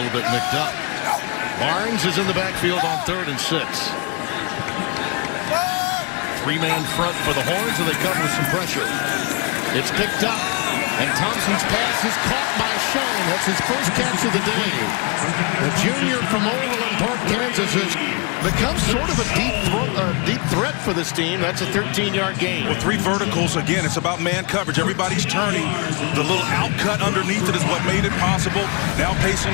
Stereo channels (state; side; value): quieter; right; 30.9 dB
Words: bit nicked up. Barnes is in the backfield on 3rd and 6. Three-man front for the Horns, and they come with some pressure. It's picked up, and Thompson's pass is caught by Schoen. That's his first catch of the day. The junior from Overland Park, Kansas, has become sort of a deep threat for this team. That's a 13-yard gain. Well, 3 verticals. Again, it's about man coverage. Everybody's turning. The little out cut underneath it is what made it possible. Now pace